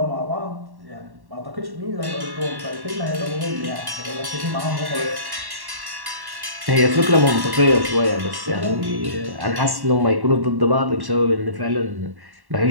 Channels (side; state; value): left; late; 1.1 ms